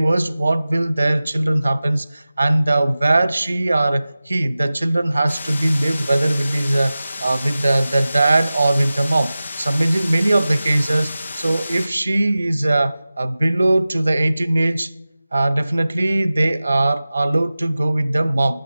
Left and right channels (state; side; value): inverted; both; correlation -0.96